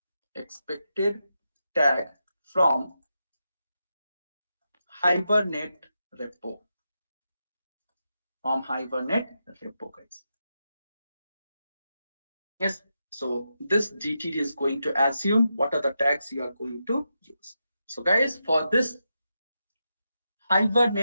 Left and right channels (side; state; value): both; inverted; correlation -0.87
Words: from Hibernate repo, guys. Yes, So this DTD is going to assume what are the tags you are going to use. So guys, for this